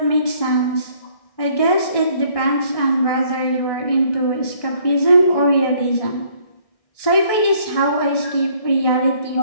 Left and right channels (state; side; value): late; right; 1.6 ms